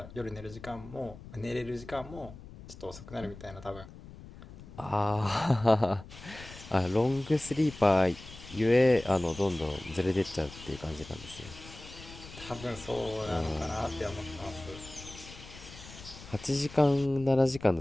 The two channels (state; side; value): noise; left; rumble, 16 dB below the sound